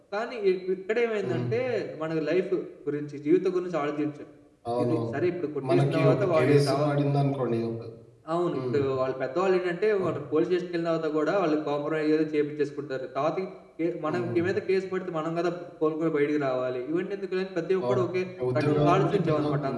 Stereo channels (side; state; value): both; identical; correlation 1.00